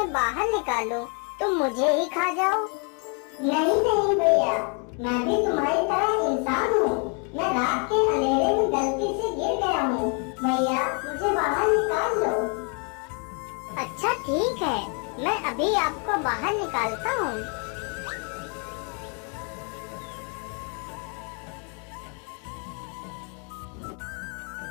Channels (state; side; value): quieter; right; 38.0 dB